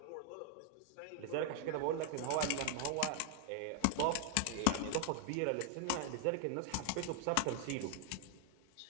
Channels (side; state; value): both; different; correlation 0.00